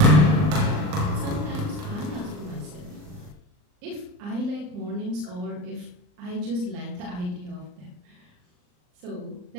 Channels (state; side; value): late; left; 39 ms